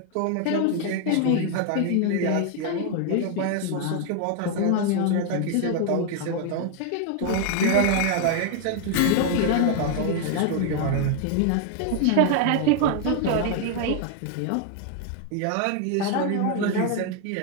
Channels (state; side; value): different; both; correlation 0.00